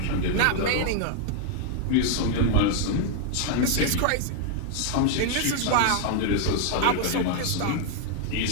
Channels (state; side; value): different; both; correlation 0.00